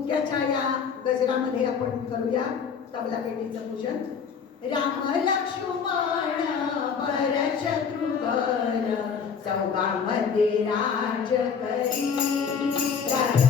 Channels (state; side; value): quieter; right; 6.4 dB